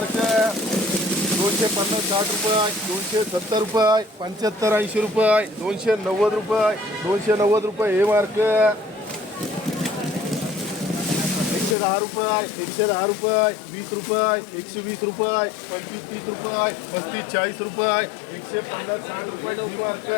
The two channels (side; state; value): right; drops out; at 11.8 s